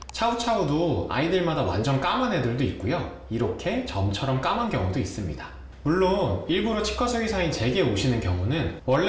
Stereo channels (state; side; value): identical; both; correlation 1.00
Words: 차우차우도 아이들마다 완전 까만 애들도 있고요. 이렇게 점처럼 까만 경우도 있습니다. 물론 일부러 치과 수의사인 제게 오시는 경우는